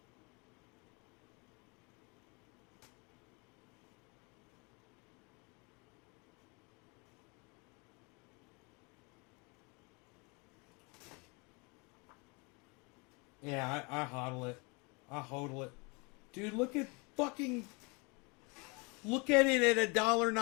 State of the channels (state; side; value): quieter; right; 30.2 dB